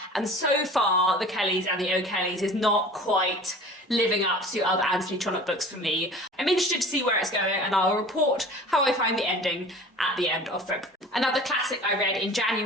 and so far The Kellys and the O'Kellys is not quite living up to other Anthony Trollope books for me. I'm interested to see where it's going, and I'll report how I find the ending at the end of February. Another classic I read in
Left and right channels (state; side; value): normal; both; correlation 0.42